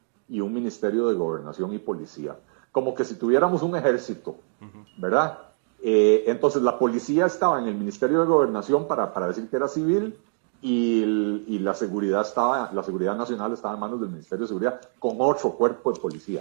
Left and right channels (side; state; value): left; silent; digital silence